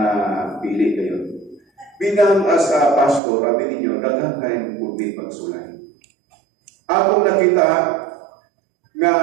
pili kayo. bilang as a pastor, sabi ninyo, daghang kayong pundi pagsulay. Akong nakita nga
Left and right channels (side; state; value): left; drops out; at 3.2 s